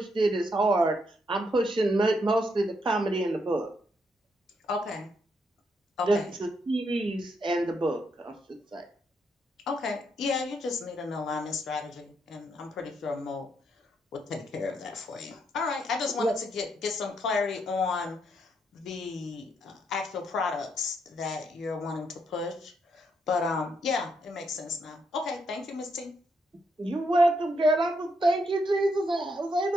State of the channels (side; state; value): both; normal; correlation 0.77